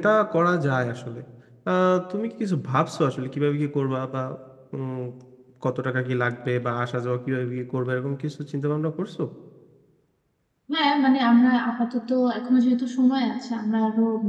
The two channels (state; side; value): identical; both; correlation 1.00